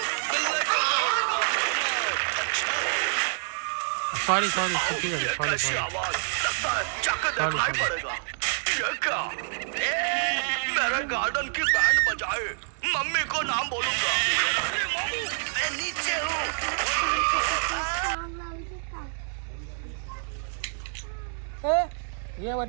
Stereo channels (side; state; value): left; silent; digital silence